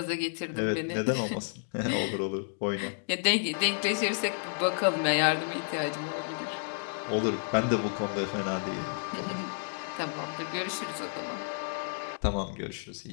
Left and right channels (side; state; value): right; silent; digital silence